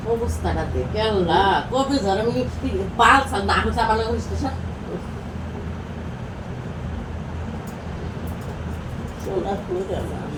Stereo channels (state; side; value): identical; both; correlation 1.00